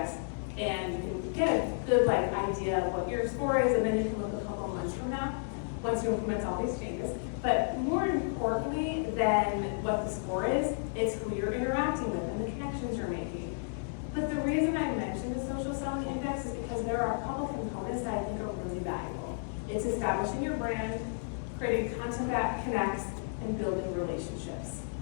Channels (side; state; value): right; silent; digital silence